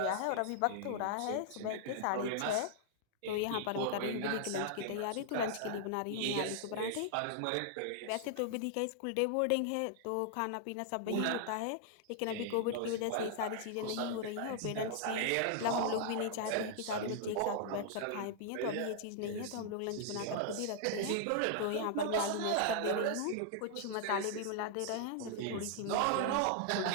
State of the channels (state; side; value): different; both; correlation -0.01